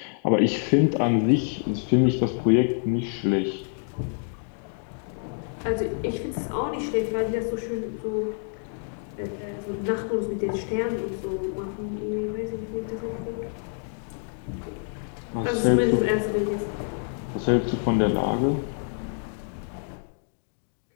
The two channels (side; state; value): right; silent; 60 dB below the other